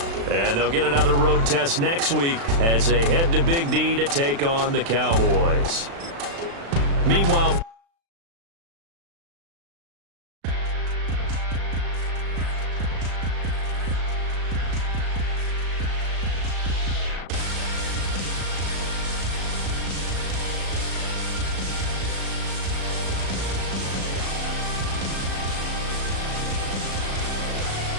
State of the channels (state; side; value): late; left; 36 ms